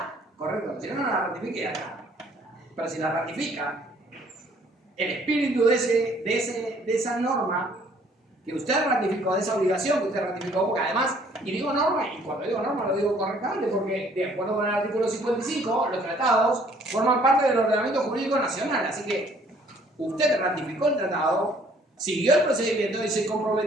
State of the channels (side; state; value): both; normal; correlation 0.60